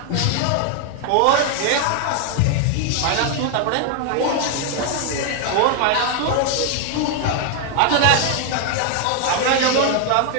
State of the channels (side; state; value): both; different; correlation 0.01